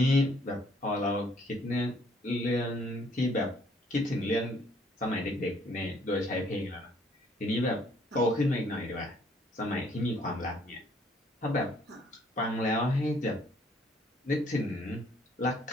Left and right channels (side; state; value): both; normal; correlation 0.63